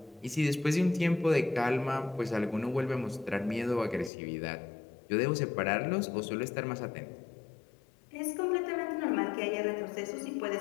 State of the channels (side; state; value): right; drops out; at 4.1 s